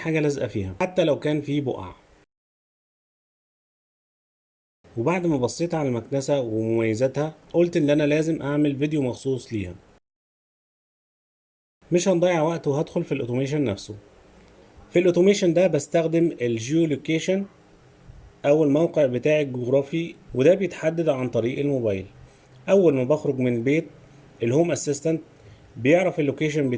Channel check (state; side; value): identical; both; correlation 1.00